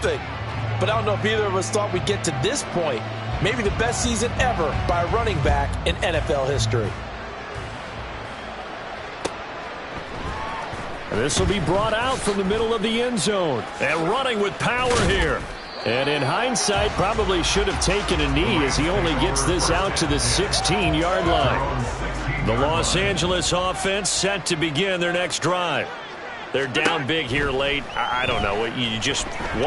But I don't know if either of us thought we'd get to this point. Maybe the best season ever by a running back in NFL history. This will be brought out from the middle of the end zone. And running with power here. And in hindsight, probably should have taken a knee as he only gets this out to the 16-yard line. The Los Angeles offense set to begin their next drive. They're down big here late. I don't know. You just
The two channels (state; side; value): identical; both; correlation 1.00